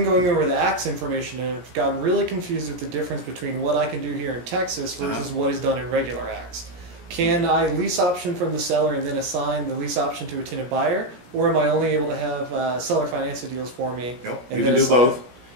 going over the acts information and have gotten really confused with the difference between what I can do here in Texas versus what is done in regular acts. Can I lease option from the seller and then assign the lease option to a tenant buyer? Or am I only able to have seller finance the deals for me? Nope, you can do both.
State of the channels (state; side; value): late; left; 17 ms